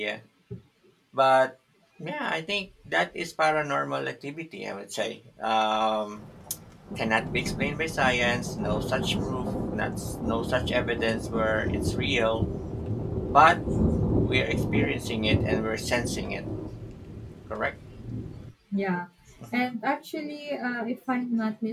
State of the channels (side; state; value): both; identical; correlation 1.00